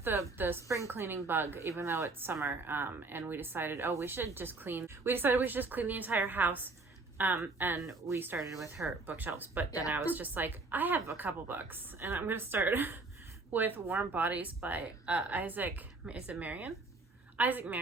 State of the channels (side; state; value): left; quieter; 3.5 dB